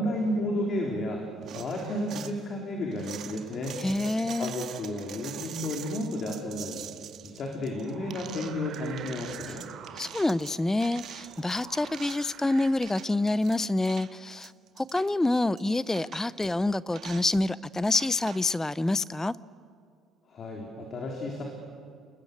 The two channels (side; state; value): both; normal; correlation 0.85